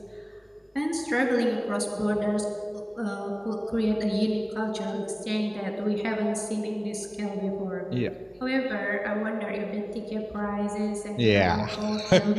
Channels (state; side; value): identical; both; correlation 1.00